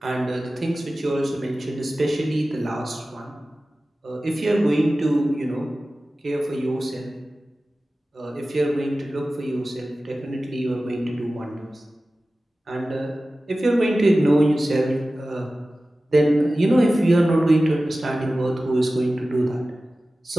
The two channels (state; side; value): normal; both; correlation 0.96